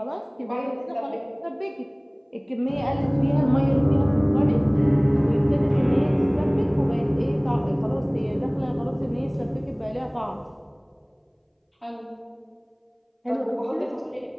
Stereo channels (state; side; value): identical; both; correlation 1.00